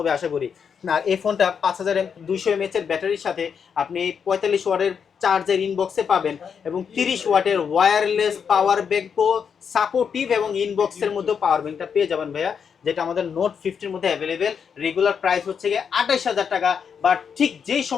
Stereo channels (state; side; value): quieter; right; 6.9 dB